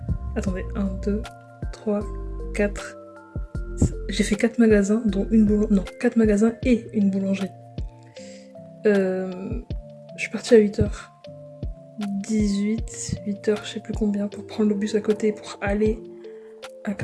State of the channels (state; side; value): identical; both; correlation 1.00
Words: Attendez, 1, 2, 3, 4. J'ai fait 4 magasins, dont une boulangerie. Non, 4 magasins et une boulangerie. Je suis partie à 8h. 8h, je sais plus combien, pour prendre le bus à côté pour aller à